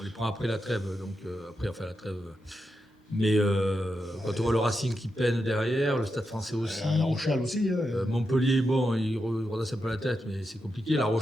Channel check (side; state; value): both; normal; correlation 0.87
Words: les prend après la trêve, donc après on fait la trêve. Mais quand on voit le Racing qui peine derrière, le Stade Français aussi. La Rochelle aussi. Montpellier, bon, il redresse un peu la tête, mais c'est compliqué. La